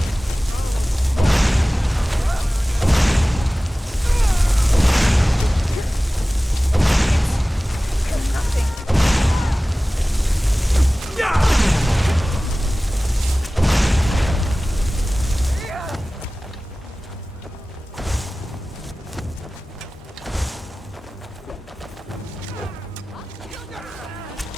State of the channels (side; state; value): both; normal; correlation 0.97